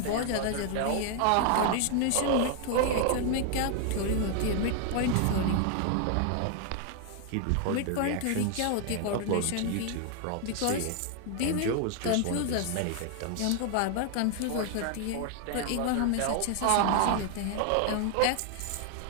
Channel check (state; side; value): different; both; correlation 0.00